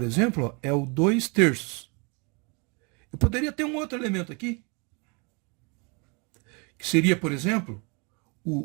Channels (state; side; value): quieter; left; 32.2 dB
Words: exemplo, ó, é o 2/3. Eu poderia ter um outro elemento aqui, que seria, por exemplo,